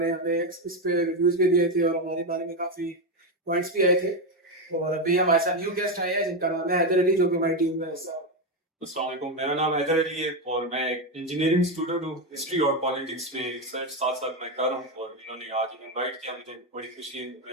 ने हमें इस पे रिव्यूज भी दिए थे और हमारे बारे में काफी पॉइंट्स भी आए थे। और अभी हमारे साथ न्यू गेस्ट आए हैं जिनका नाम है हैदर अली, जो कि हमारी टीम में हिस्सा है। अस्सलाम वालेकुम, मेरा नाम हैदर अली है और मैं एक इंजीनियरिंग स्टूडेंट हूँ। हिस्ट्री और पॉलिटिक्स में रिसर्च साथ साथ मैं कर रहा हूँ और इन्होंने आज इनवाइट किया, मुझे बड़ी खुशी है।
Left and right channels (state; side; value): normal; both; correlation 0.10